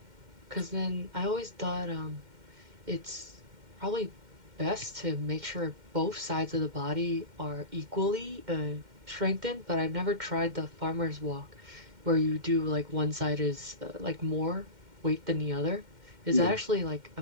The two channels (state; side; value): late; left; 2.1 ms